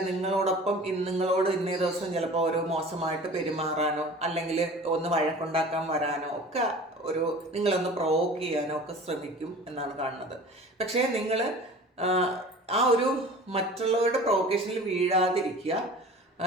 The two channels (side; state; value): both; normal; correlation 0.41